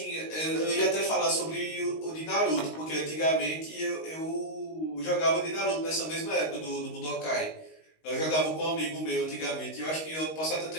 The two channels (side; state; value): right; late; 19 ms